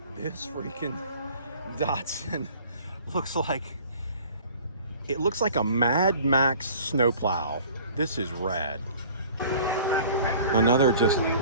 This freaking Datsun looks like a Mad Max snowplow. This is rad. Another just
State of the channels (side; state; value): both; inverted; correlation -0.48